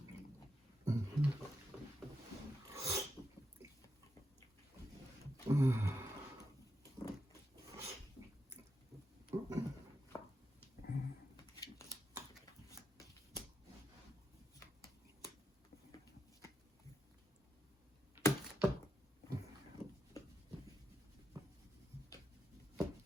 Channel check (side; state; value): both; normal; correlation 0.84